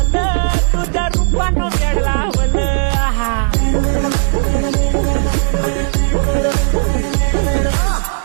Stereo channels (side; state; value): left; silent; 70 dB below the other